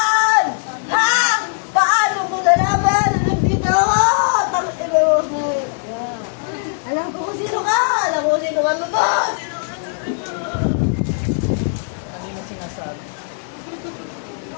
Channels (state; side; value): silent; right; digital silence